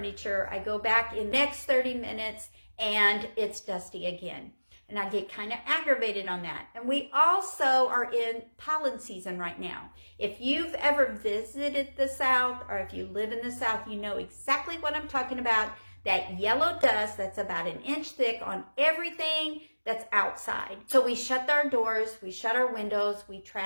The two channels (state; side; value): inverted; both; correlation -1.00